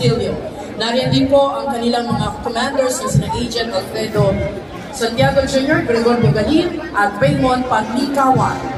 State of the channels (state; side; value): identical; both; correlation 1.00